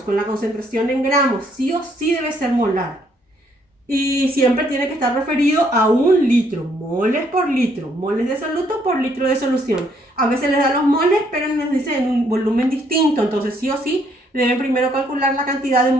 con la concentración en gramos. Sí o sí debe ser molar. Y siempre tiene que estar referido a 1 litro, moles por litro, moles de soluto por litro de solución. A veces les da los moles, pero nos dice en un volumen distinto, entonces sí o sí deben primero calcular la cantidad de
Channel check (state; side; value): normal; both; correlation 0.69